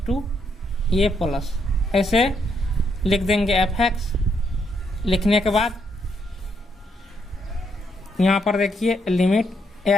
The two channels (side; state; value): both; normal; correlation 0.76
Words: to a plus, ऐसे लिख देंगे एफ एक्स। लिखने के बाद यहाँ पर देखिए limit